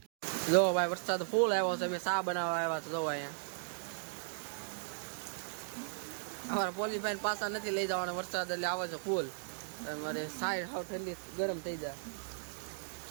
જો ભાઈ વરસાદ ફૂલ આવ્યો છે અમે ચા બનાવવા આવ્યા છે જો અહીંયા અમારા પોલીસભાઈ પાછા નથી લઈ જવાના વરસાદ એટલે આવે છે ફૂલ મારે સાઈડ હાવ ઠંડી ગરમ થઈ જાય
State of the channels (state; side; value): silent; left; digital silence